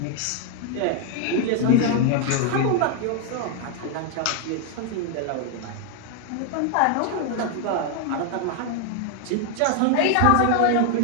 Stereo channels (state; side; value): different; both; correlation 0.00